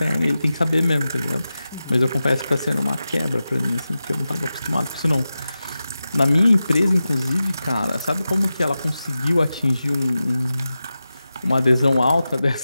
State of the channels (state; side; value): inverted; both; correlation -0.93